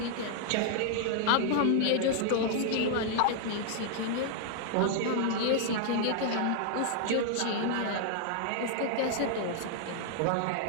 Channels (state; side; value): different; both; correlation 0.00